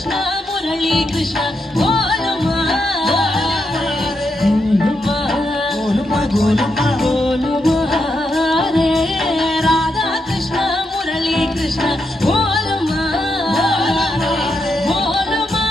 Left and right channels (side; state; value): both; normal; correlation 0.83